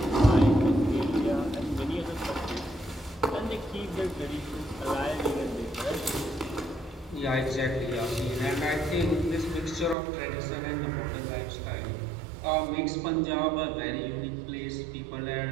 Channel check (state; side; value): drops out; left; at 10.0 s